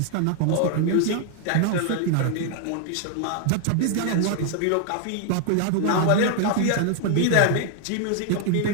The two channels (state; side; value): different; both; correlation 0.00